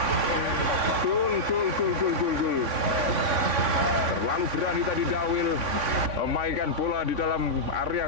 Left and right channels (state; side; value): late; left; 3.5 ms